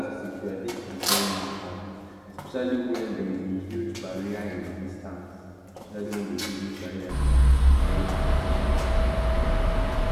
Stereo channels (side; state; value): both; identical; correlation 1.00